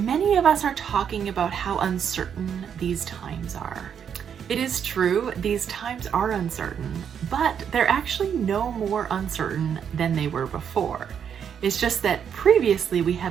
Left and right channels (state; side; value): quieter; left; 8.0 dB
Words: of us are talking about how uncertain these times are. It is true, these times are uncertain, but they're actually no more uncertain than they were before. It's just that previously we